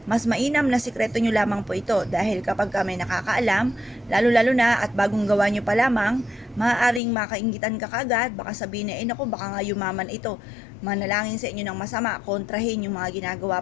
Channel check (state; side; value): drops out; right; at 7.0 s